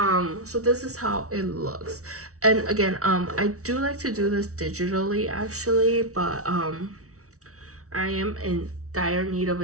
So this is how it looks. And again, I do like to do this digitally actually, but I am in dire need of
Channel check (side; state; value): left; late; 0.65 ms